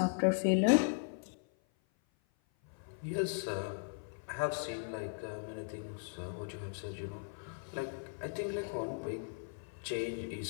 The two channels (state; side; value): silent; right; 53 dB below the other